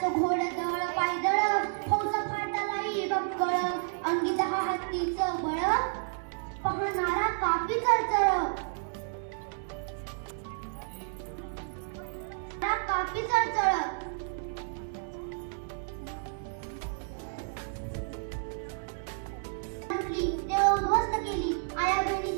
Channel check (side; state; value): left; silent; digital silence